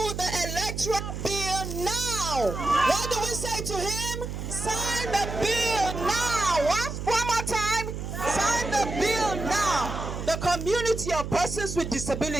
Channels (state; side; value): noise; right; hum, 6 dB below the sound